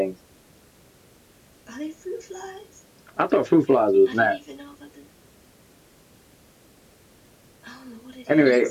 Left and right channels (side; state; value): both; identical; correlation 1.00